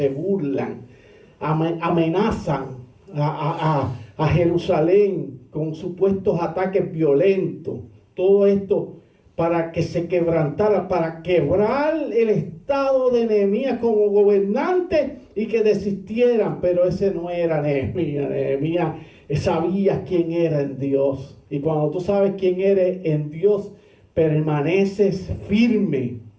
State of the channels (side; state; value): both; identical; correlation 1.00